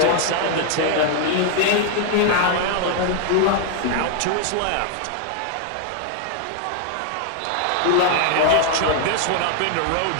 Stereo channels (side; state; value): both; different; correlation 0.00